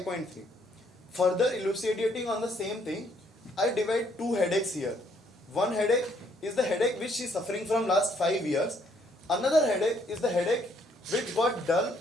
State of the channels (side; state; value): both; normal; correlation 0.68